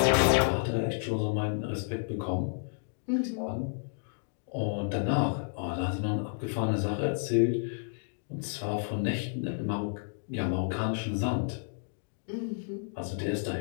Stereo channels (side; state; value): right; silent; digital silence